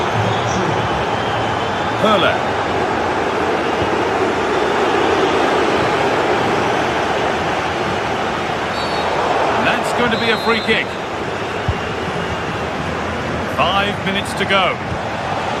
Hurler. And that's going to be a free kick. 5 minutes to go.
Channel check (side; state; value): both; identical; correlation 1.00